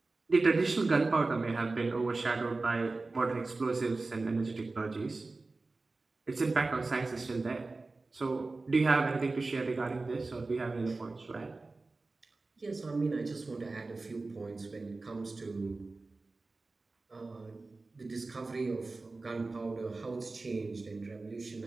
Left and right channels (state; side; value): quieter; left; 3.5 dB